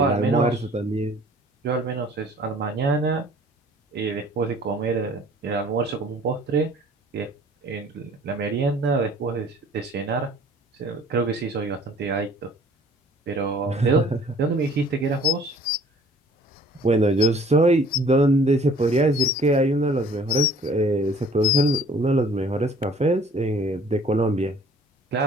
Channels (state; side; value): normal; both; correlation 0.53